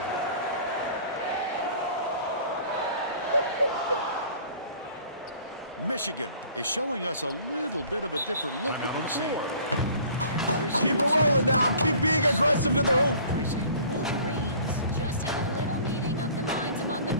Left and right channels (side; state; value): both; inverted; correlation -0.50